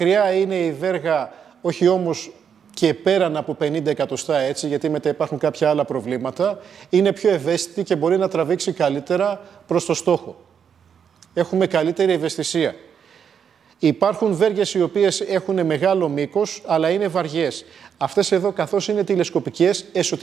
είναι η βέργα, όχι όμως και πέραν από 50 εκατοστά έτσι, γιατί μετά υπάρχουν κάποια άλλα προβλήματα, είναι πιο ευαίσθητη και μπορεί να τραβήξει καλύτερα προς το στόχο. Έχουμε καλύτερη ευαισθησία. Υπάρχουν βέργες οι οποίες έχουν μεγάλο μήκος, αλλά είναι βαριές. Αυτές εδώ, καθώς είναι τηλεσκοπικές,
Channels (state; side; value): quieter; left; 7.5 dB